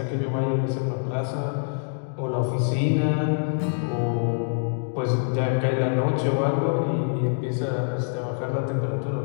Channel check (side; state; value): right; silent; 61 dB below the other